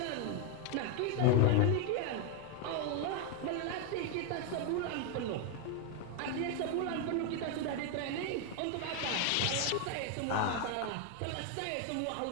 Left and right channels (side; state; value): both; different; correlation 0.01